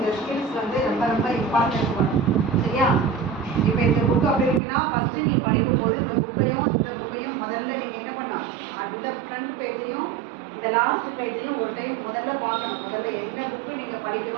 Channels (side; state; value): left; drops out; at 4.6 s